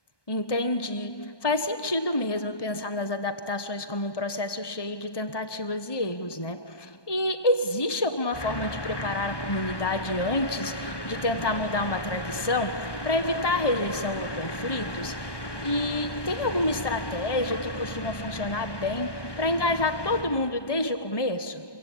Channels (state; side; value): late; right; 1.2 ms